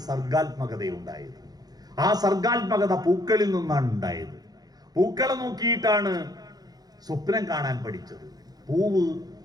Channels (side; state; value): left; late; 0.19 ms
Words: സർഗാത്മകത ഉണ്ടായത്. ആ സർഗാത്മകത പൂക്കളിൽ നിന്നാണ് ഉണ്ടായത്. പൂക്കളെ നോക്കിയിട്ടാണ് സ്വപ്നം കാണാൻ പഠിച്ചത്.